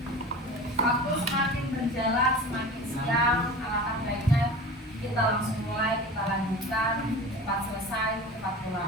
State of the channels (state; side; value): normal; both; correlation 0.35